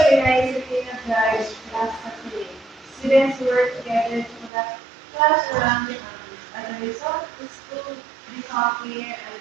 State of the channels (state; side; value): drops out; left; at 4.5 s